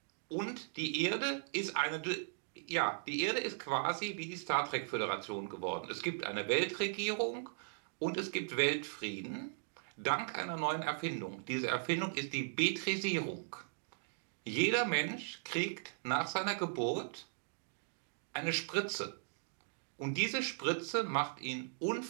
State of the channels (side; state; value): left; silent; digital silence